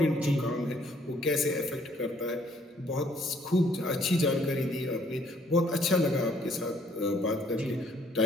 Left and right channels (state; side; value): normal; both; correlation 0.64